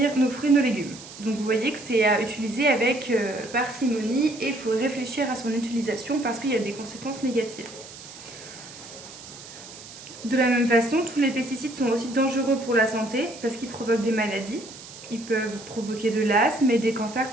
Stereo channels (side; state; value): right; noise; hiss, 16 dB below the sound